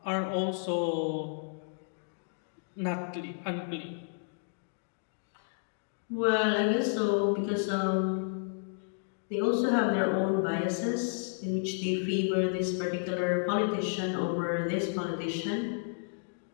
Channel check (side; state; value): right; silent; digital silence